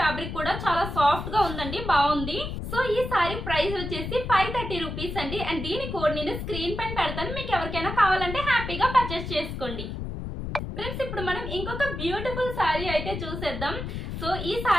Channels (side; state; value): left; noise; rumble, 6 dB below the sound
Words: కూడా చాలా సాఫ్ట్ గా ఉందండి, బాగుంది. సో ఈ సారీ ప్రైస్ వచ్చేసి 530 రూపీస్ అండి. అండ్ దీని కోడ్ నేను స్క్రీన్ పైన పెడతాను, మీకు ఎవరికైనా కావాలంటే హ్యాపీగా పర్చేస్ చేసుకోండి. ఫ్రెండ్స్, ఇప్పుడు మనం ఇంకొక బ్యూటిఫుల్ సారీ అయితే చూసేద్దాం. సో ఈ